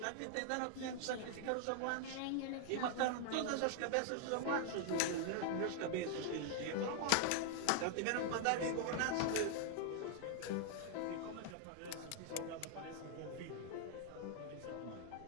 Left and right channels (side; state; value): both; different; correlation 0.00